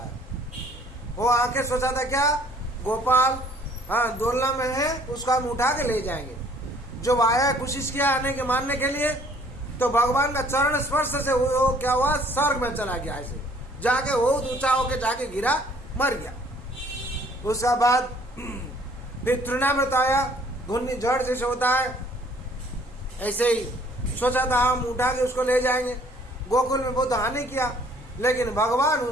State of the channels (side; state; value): both; normal; correlation 0.58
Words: वो आके सोचा था क्या, गोपाल हाँ डोलना में है, उसको हम उठा के ले जाएंगे। जब आया कोशिश किया आने के मारने के लिए, तो भगवान का चरण स्पर्श से वो क्या हुआ, स्वर्ग में चला गया। ऐसे जाके बहुत ऊंचा होके जाके गिरा, मर गया। उसके बाद फिर तृणामृत आया, घुन्नी जड़ जैसे होता है, ऐसे ही सोचा था हम उठा के उसको ले जाएंगे। गोकुल में बहुत हानि किया, लेकिन भगवान